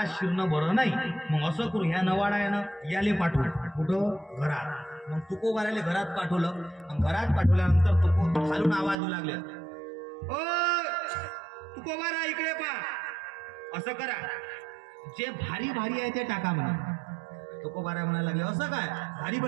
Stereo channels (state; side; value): drops out; left; at 9.0 s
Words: शिरणं बरं नाही, मग असं करू, ह्या नवाडा आहे ना, याले पाठवू. कुठं? घरात. मग तुकोबारायला घरात पाठवलं. घरात पाठवल्यानंतर तुको खालून आवाज येऊ लागले, ओ तुकोबारा इकडे पा. असं करा, जे भारी भारी आहे ते टाका म्हणा. तुकोबाराय म्हणायला लागले, असं काय भारी